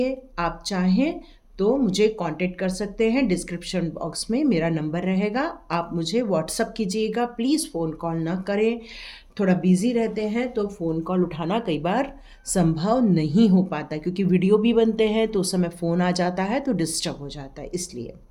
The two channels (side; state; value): both; identical; correlation 1.00